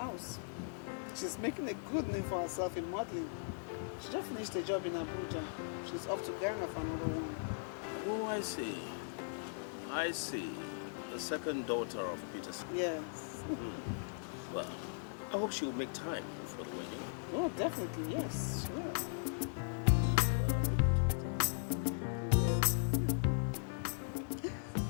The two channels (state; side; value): silent; right; digital silence